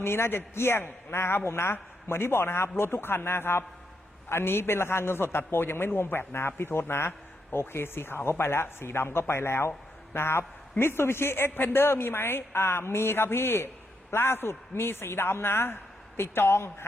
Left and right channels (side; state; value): both; normal; correlation 0.80